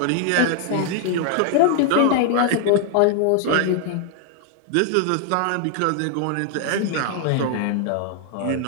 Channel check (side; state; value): both; different; correlation 0.00